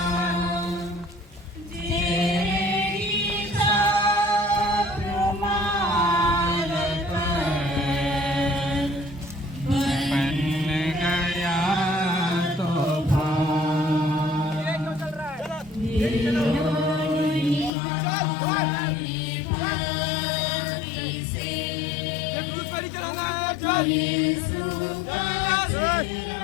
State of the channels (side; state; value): right; drops out; at 17.7 s